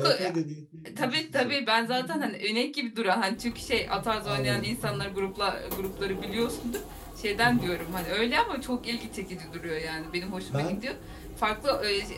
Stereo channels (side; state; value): both; identical; correlation 1.00